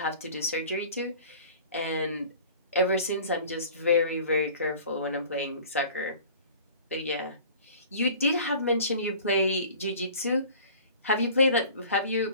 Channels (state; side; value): inverted; both; correlation -0.44